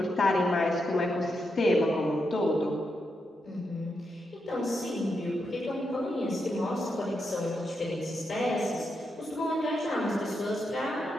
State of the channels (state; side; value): normal; both; correlation 0.84